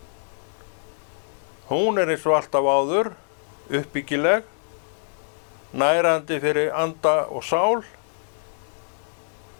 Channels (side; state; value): right; silent; digital silence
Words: Hún eins og alltaf áður, uppbyggileg, nærandi fyrir anda og sál,